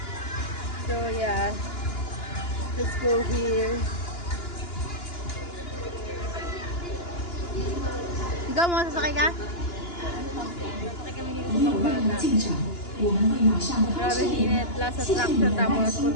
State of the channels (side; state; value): right; late; 2.9 ms